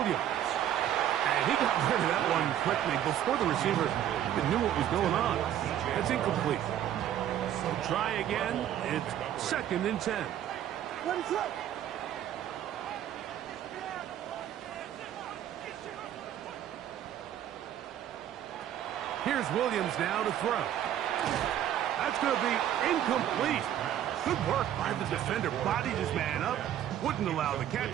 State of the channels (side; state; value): left; quieter; 11.0 dB